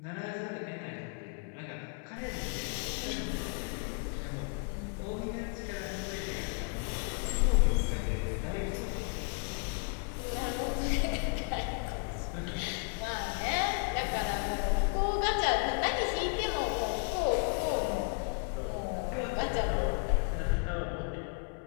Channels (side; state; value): right; quieter; 39.0 dB